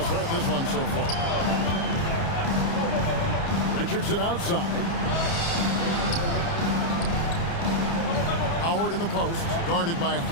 start this one so far. Richardson outside. Howard in the post, guarded by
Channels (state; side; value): late; right; 30 ms